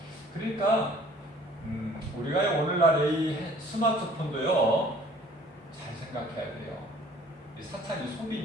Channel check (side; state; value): both; normal; correlation 0.53